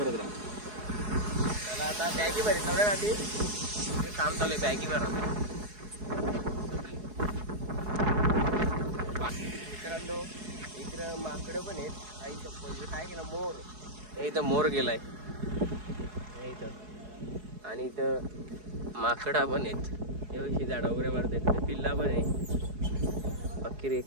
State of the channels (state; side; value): late; left; 4.7 ms